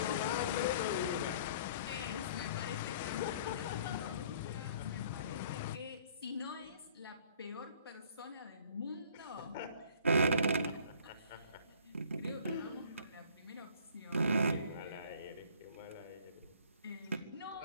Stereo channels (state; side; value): inverted; both; correlation -0.54